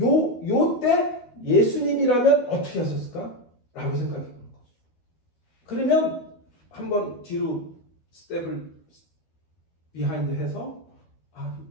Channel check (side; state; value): right; late; 12 ms